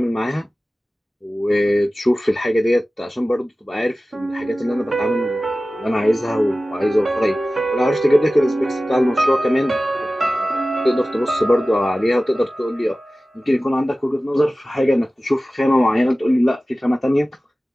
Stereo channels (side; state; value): both; normal; correlation 0.96